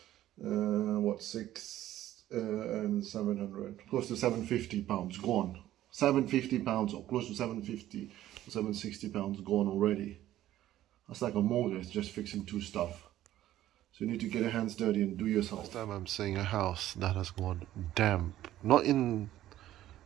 what, 6 and 700, close to 750 pounds gone. 750 pounds, or close to 750 or 760 pounds gone already. That's like a mortgage just fixing 2 stuff. So you need to get your hands dirty and do yourself. Last time I'm seeing a house that has gone damp. Not in,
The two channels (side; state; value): left; quieter; 13.5 dB